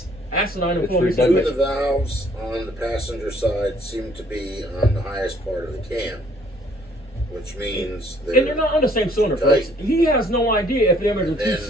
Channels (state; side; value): normal; both; correlation 0.62